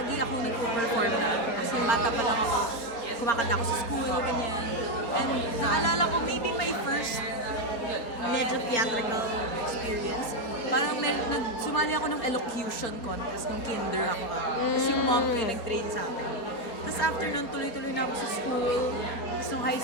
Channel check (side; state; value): right; late; 4.3 ms